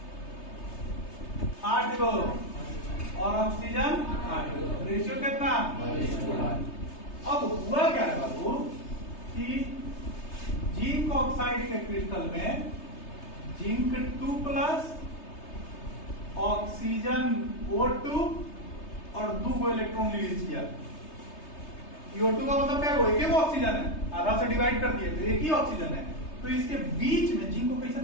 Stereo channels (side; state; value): right; late; 3.3 ms